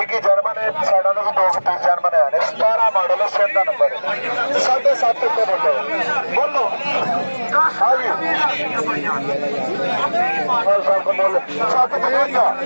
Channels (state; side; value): inverted; both; correlation -1.00